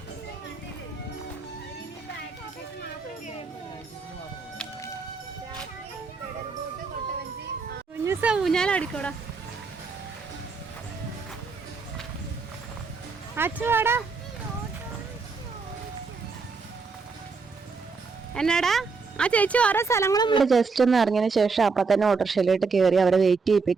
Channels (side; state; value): left; quieter; 4.6 dB